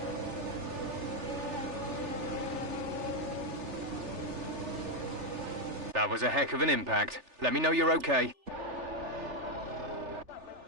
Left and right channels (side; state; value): left; late; 3.4 ms